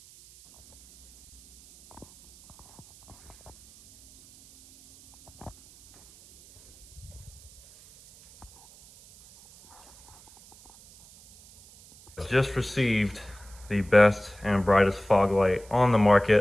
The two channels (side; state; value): right; noise; hiss, 24 dB below the sound